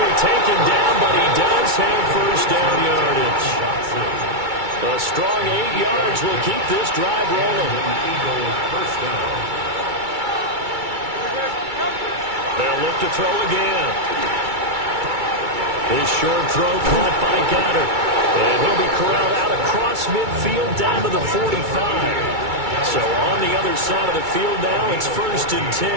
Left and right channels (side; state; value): left; late; 2.3 ms